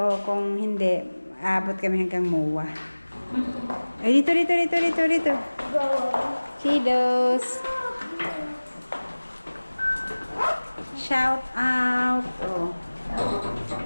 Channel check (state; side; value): inverted; both; correlation -1.00